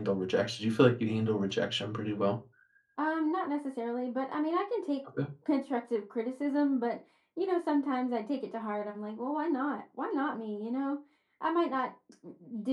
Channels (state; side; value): identical; both; correlation 1.00